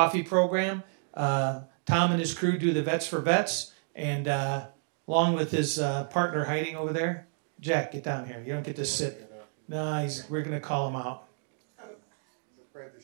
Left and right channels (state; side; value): silent; left; 58 dB below the other